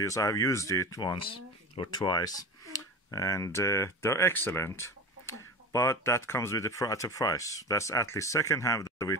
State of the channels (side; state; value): both; normal; correlation 0.30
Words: I've used it once or twice. And they're excellent. But that comes with at a price. That's at least second hand of